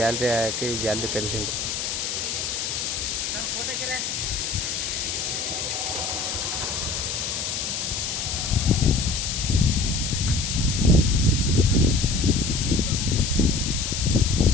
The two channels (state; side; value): noise; left; hiss, 2 dB below the sound